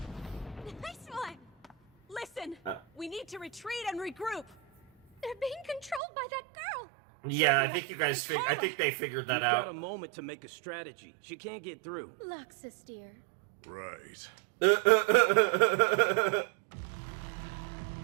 Nice one. Listen, Uh. we need to retreat and regroup. They're being controlled by that girl. Yeah, I Juvia, think you guys. and I Carla. think they figured that We've got a out. moment to make a strategy. She can't get through. Luxus, dear. Right.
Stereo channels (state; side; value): drops out; left; at 6.0 s